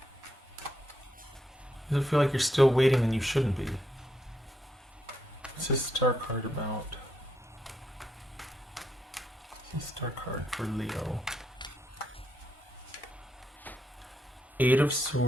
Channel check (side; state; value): both; normal; correlation 0.79